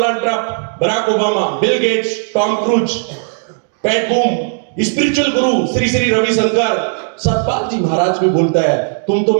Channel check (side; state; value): left; silent; digital silence